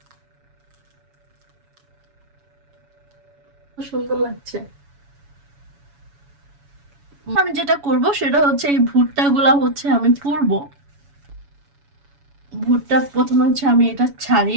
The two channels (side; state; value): left; late; 7.1 ms